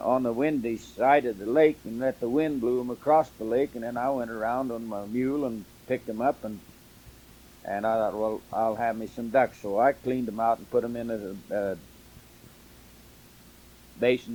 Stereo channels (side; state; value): both; identical; correlation 1.00